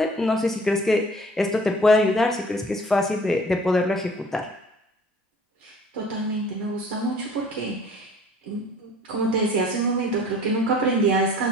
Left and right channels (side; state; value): both; normal; correlation 0.51